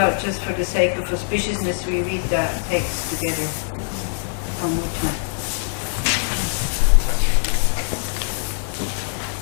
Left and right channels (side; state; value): right; silent; digital silence